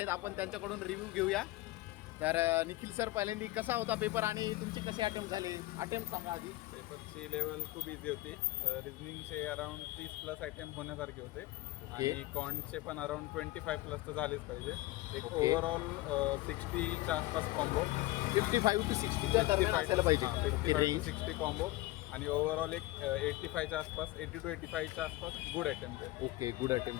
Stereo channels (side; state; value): right; quieter; 18.9 dB